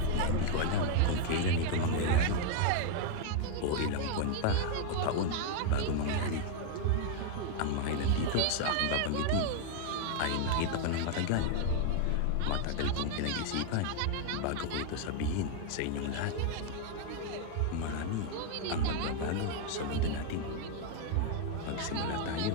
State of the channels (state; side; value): different; both; correlation 0.00